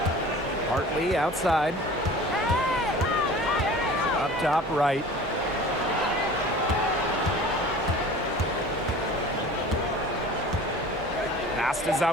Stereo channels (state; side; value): normal; both; correlation 0.42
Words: Hartley outside. Up top right. Pass to